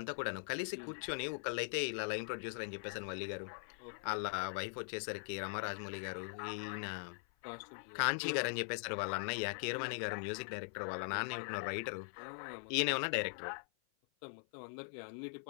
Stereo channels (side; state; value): right; silent; 50 dB below the other